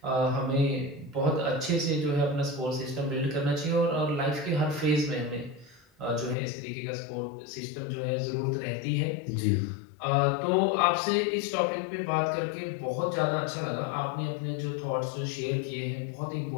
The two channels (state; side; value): drops out; right; at 6.4 s